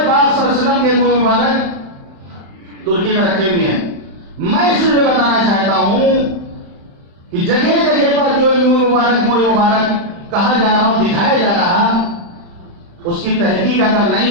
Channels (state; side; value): late; left; 35 ms